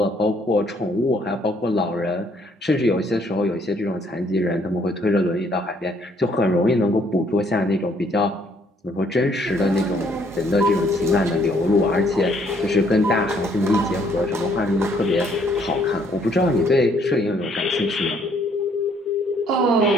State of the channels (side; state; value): both; normal; correlation 0.66